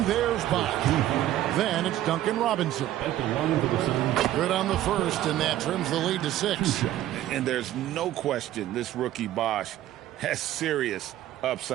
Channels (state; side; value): quieter; left; 13.4 dB